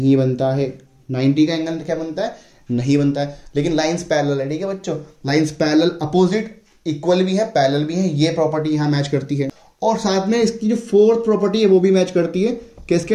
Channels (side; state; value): both; identical; correlation 1.00